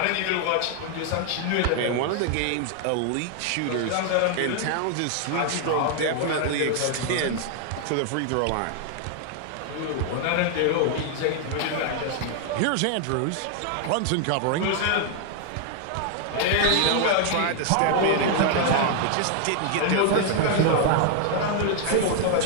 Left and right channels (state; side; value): different; both; correlation 0.00